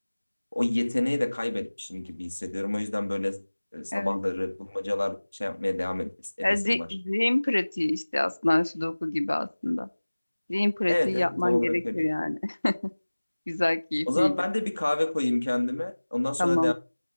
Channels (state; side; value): inverted; both; correlation -1.00